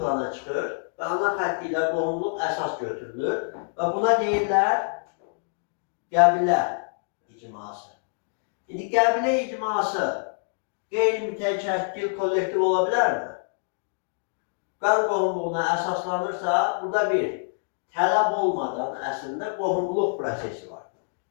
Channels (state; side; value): silent; right; digital silence